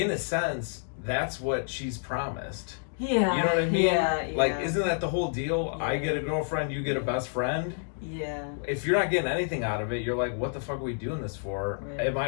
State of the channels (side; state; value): right; silent; digital silence